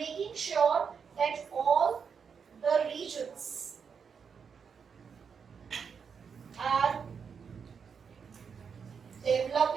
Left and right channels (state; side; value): quieter; left; 6.4 dB